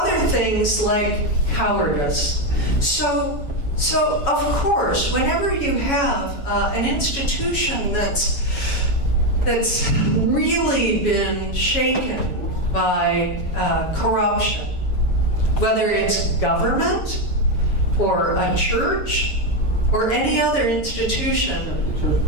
things like cowardice. So of course, whenever you have an institution that's really been shaken by corruption, whether it's government or a church or any other institution. The church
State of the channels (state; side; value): late; right; 7.1 ms